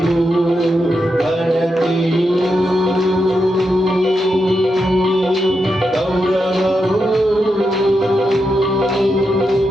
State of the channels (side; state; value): both; normal; correlation 0.85